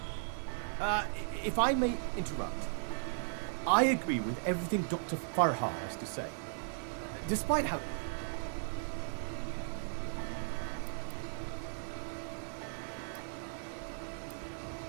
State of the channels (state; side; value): silent; left; digital silence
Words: If I may interrupt, I agree with everything Dr. Farha has to say. Despite how...